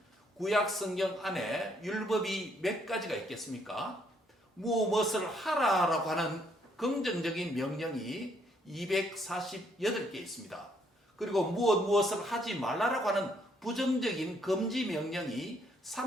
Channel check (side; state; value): both; normal; correlation 0.70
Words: 구약 성경 안에 율법이 몇 가지가 있겠습니까? 무엇을 하라라고 하는 긍정적인 명령이 248개 있습니다. 그리고 무엇을 하지 말라라고 하는 부정적인 금지 명령이